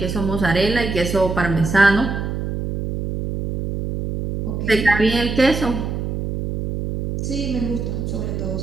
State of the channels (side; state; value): right; noise; hum, 3 dB below the sound